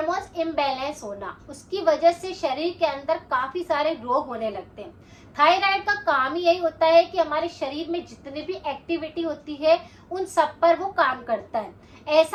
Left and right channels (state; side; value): identical; both; correlation 1.00